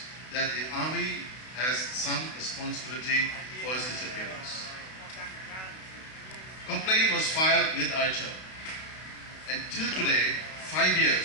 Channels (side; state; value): right; late; 32 ms